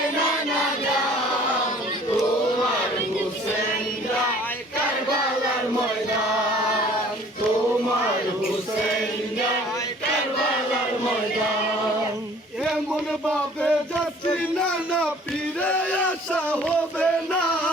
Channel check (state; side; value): normal; both; correlation 0.52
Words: নানা জান তোমার হোসেন যায় কারবালার ময়দান তোমার হোসেন যায় কারবালার ময়দান এমন ভাবে যাচ্ছি নানা ফিরে আসা হবে না